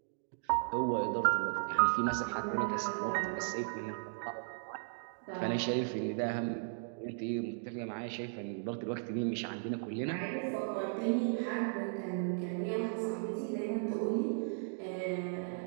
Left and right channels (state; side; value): silent; left; digital silence